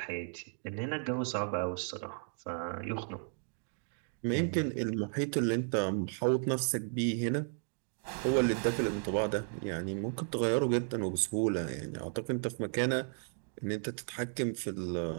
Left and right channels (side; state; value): left; silent; 55 dB below the other